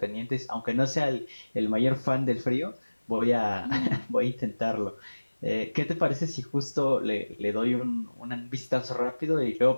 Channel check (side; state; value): both; inverted; correlation -1.00